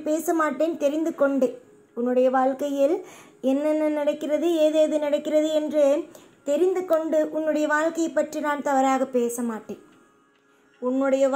பேச மாட்டேன். தெரிந்து கொண்டேன் உன்னுடைய வாழ்க்கையில் என்னென்ன நடக்கிறது, ஏதேது நடக்கிறது என்று தெரிந்து கொண்டு உன்னுடைய வாழ்க்கையை பற்றி நான் தவறாக பேச மாட்டேன். உன்னுடைய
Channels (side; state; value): both; identical; correlation 1.00